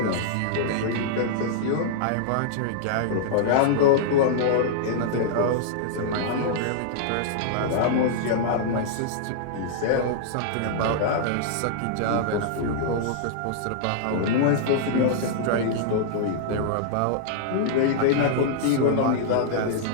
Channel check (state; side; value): different; both; correlation -0.02